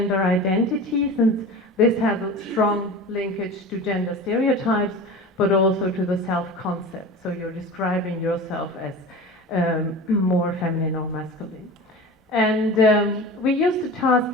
identity, since this has a strong linkage to gender stereotypes, but also to the self-concept. So you're describing yourself as more feminine or masculine. And we used a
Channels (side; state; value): both; normal; correlation 0.33